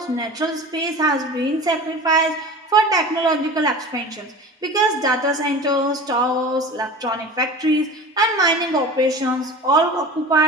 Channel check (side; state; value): both; normal; correlation 0.36